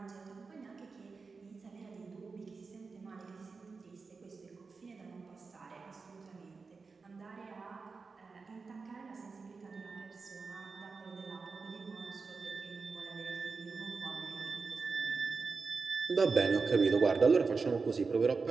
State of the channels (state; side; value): quieter; left; 4.5 dB